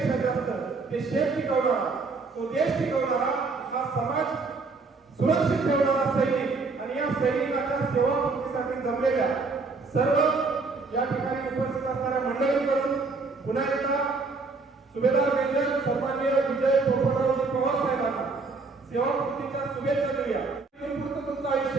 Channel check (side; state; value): left; quieter; 4.1 dB